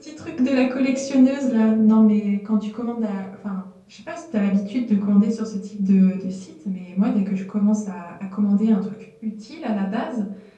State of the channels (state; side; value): identical; both; correlation 1.00